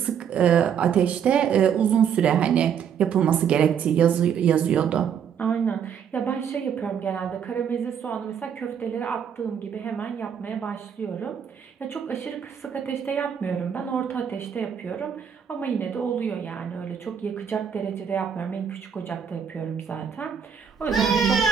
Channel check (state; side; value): quieter; left; 7.9 dB